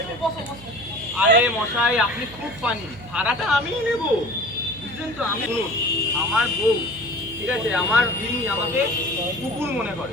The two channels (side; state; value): right; noise; hum, 18 dB below the sound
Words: আরে মশাই আপনি খুব পানি, ভাড়াটা আমিই নেব, বুঝলেন তো? আমি শুনুন, আমার বউ, ঠিক আছে, আমার তিনি আমাকে কুকুর মনে